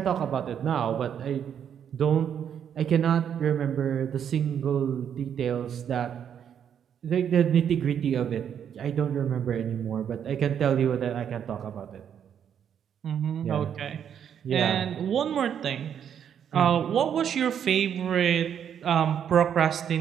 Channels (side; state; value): left; quieter; 8.6 dB